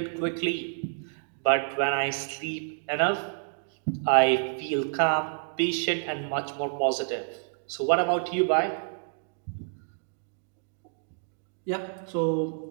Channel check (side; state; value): left; silent; digital silence